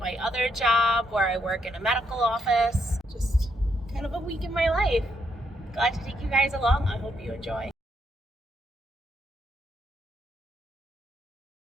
my other job where I work in a medical office. Just kind of a week in my life. Glad to take you guys along. I hope you enjoy.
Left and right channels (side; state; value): both; normal; correlation 0.76